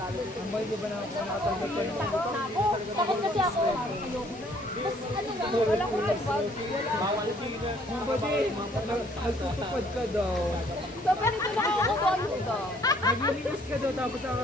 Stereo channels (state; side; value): normal; both; correlation 0.62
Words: Ang bahay ba na ako nakatanggap ka ng Takot kasi ako. Tapos ano lang, wala ko nag-vlog. Nagtutupad ka daw. So, pero ito nakakakuha ka. Naglilinis ka daw tapos